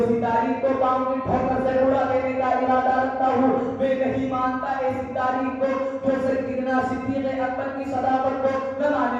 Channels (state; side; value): identical; both; correlation 1.00